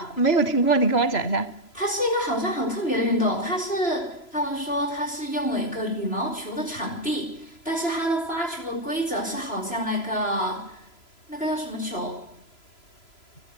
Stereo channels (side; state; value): right; late; 3.0 ms